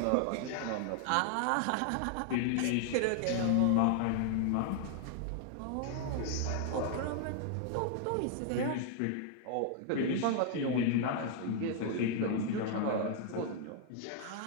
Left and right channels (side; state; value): both; different; correlation 0.00